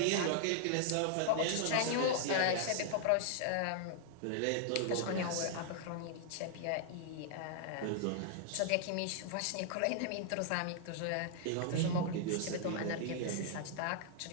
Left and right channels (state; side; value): different; both; correlation -0.01